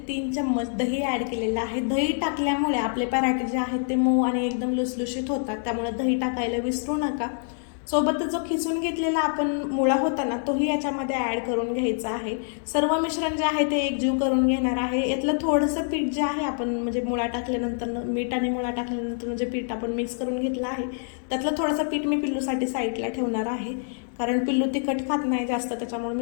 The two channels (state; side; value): silent; right; 61 dB below the other